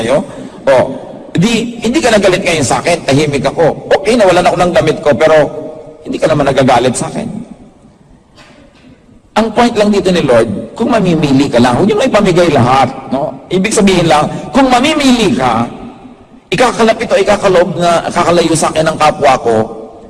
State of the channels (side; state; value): both; identical; correlation 1.00